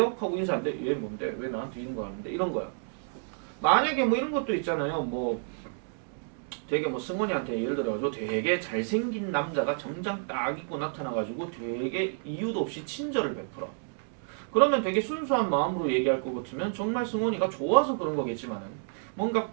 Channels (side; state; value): left; silent; digital silence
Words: 하고 인사하는데 왜 뭔데 왜 나한테 이런 거 하는데 이런 거야. 만약에 뭐 이런 것도 있잖아요. 뭐 되게 뭐 승원이한테 예를 들어가지고 되게 잘생긴 남자가 정장 딱 입고 나타나가지고 되게 이유도 없이 친절을 베풀어. 그러면 되게 순수한 마음으로 얘기할 것 같으면 정말 승원이가 좋아서 그런 거겠지만은 뭔가